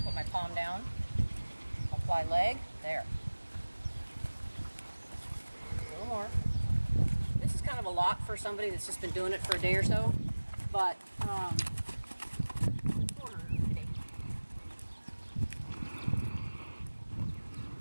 put my palm down. Apply leg. There. A little more. This is kind of a lot for somebody that's just been doing it for a day or so, but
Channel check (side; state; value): both; inverted; correlation -1.00